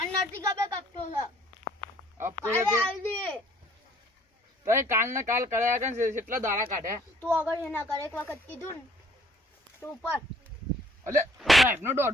નથી ખબર કપતો છે. હપ્તો કાલે તો આલી દે. તો કાલ ને કાલ કર્યા કે કેટલા દાડા કાઢ્યા. તું આગળ એના કર એક વખત કીધું ને તું ઉપર. અલે સાહેબ નો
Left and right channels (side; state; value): both; normal; correlation 0.59